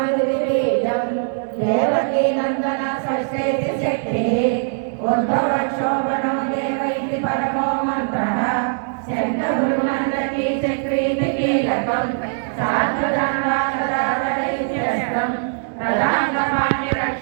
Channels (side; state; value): left; silent; digital silence